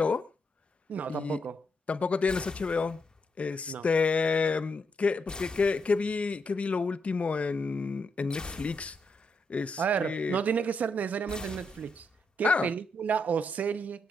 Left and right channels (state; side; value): normal; both; correlation 0.80